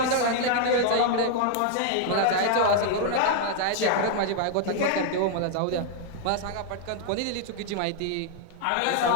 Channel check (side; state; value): both; different; correlation 0.00